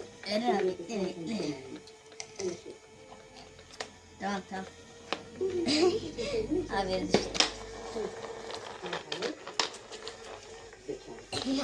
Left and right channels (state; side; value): identical; both; correlation 1.00